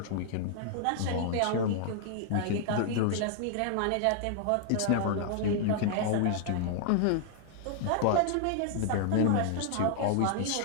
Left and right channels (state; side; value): different; both; correlation -0.01